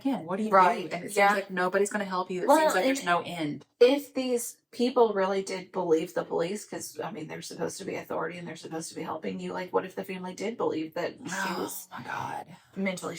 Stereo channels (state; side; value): identical; both; correlation 1.00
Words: you Right. do? And it seems like nobody's going to help you. It seems like there's no end. If these people really did believe the police, because, I mean, they're supposed to be authority and they're supposed to be helping you, like, what if the family did believe that she was my God. mentally